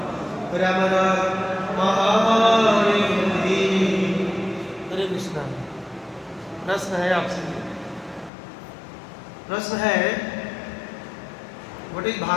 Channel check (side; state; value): right; drops out; at 8.3 s